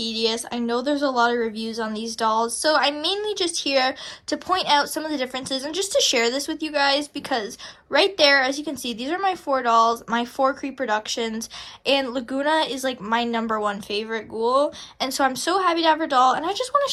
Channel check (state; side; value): identical; both; correlation 1.00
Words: I know there's a lot of reviews on these dolls, so I'm mainly just here to point out some of the differences and just to share this with you guys because right there, as you can see, these are my 4 dolls, my 4 Creeproductions, and Lagoona is like my #1 favorite ghoul, and so I'm so happy to have her doll, and I just want to